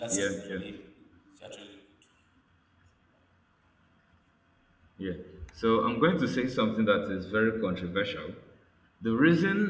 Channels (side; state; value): both; identical; correlation 1.00